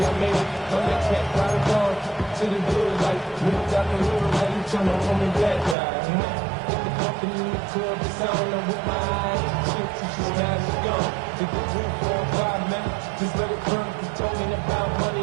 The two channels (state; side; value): drops out; left; at 5.8 s